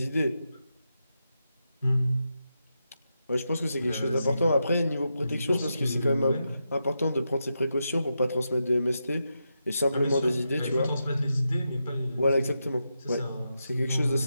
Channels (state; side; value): inverted; both; correlation -0.87